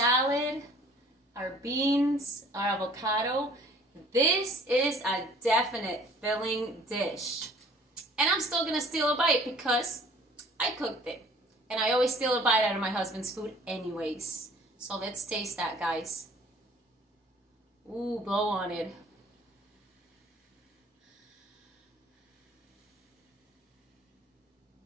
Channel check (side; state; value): both; normal; correlation 0.53